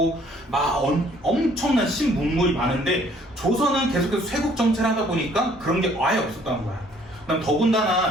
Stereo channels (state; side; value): normal; both; correlation 0.60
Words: 막 엄청난 신문물이 많은데, 조선은 계속해서 쇄국 정체를 하다 보니까 그런 게 아예 없었다는 거야. 그다음